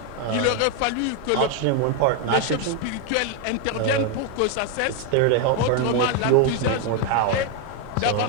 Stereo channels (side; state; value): both; different; correlation 0.01